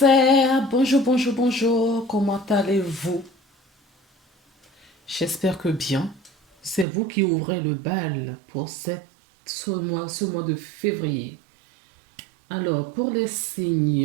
bonjour, bonjour, bonjour, comment allez-vous? J'espère que bien. C'est vous qui ouvrez le bal pour ce mois de février. Alors, pour les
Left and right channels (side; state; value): left; drops out; at 6.9 s